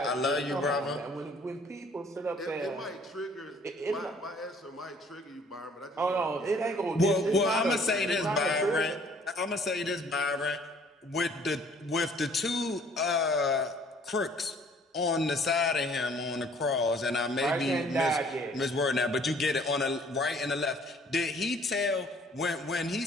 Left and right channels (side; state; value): both; normal; correlation 0.57